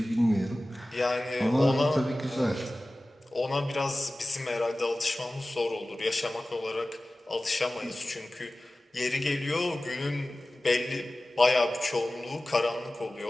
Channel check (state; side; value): normal; both; correlation 0.97